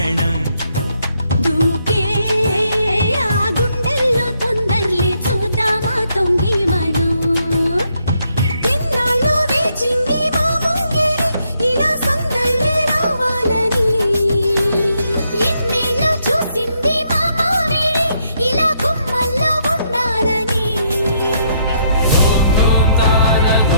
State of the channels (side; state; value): both; inverted; correlation -0.74